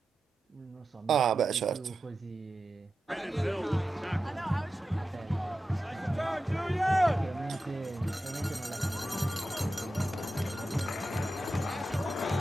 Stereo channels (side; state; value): both; normal; correlation 0.92